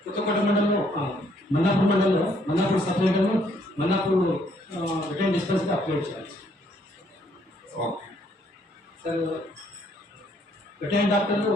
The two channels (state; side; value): normal; both; correlation 0.68